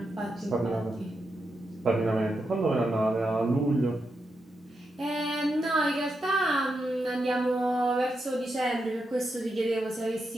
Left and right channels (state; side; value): normal; both; correlation 0.85